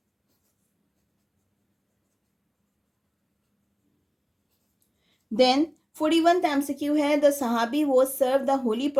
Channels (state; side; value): identical; both; correlation 1.00